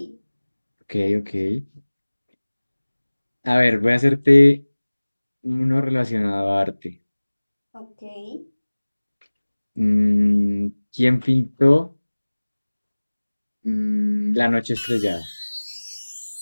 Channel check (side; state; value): both; inverted; correlation -1.00